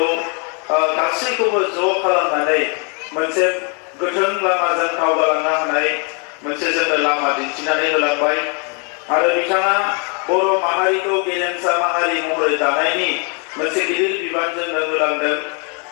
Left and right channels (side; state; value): right; quieter; 36.5 dB